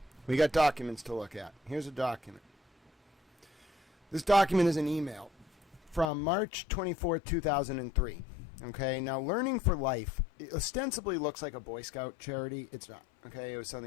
We got documents to look at. Here's a document. This document is an email from March 24, 2003. Okay, now Learning for Life it ostensibly looks like a Boy Scout charity. It's not. Okay, it was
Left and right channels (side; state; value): right; drops out; at 6.1 s